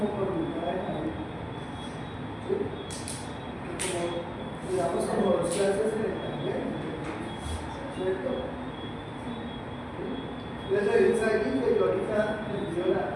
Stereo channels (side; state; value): both; identical; correlation 1.00